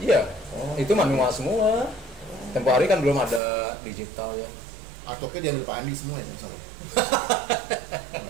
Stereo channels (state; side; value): drops out; left; at 3.4 s